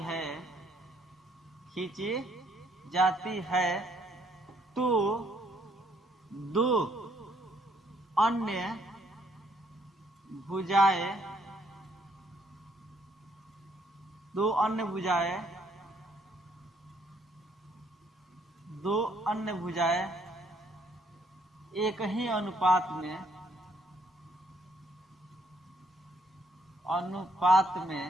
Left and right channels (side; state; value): both; normal; correlation 0.68